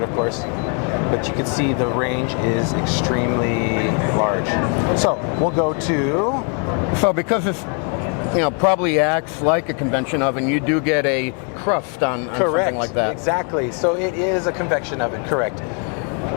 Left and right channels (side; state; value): right; quieter; 39.5 dB